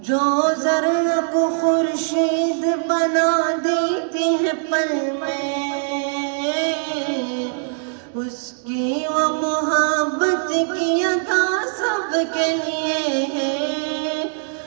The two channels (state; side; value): silent; left; 65 dB below the other